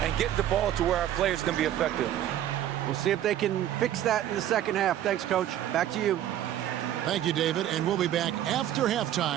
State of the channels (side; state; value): left; quieter; 11.7 dB